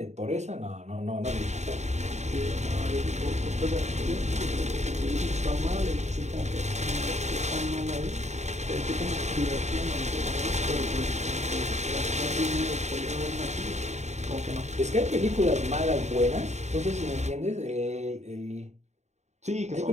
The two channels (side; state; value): left; late; 0.33 ms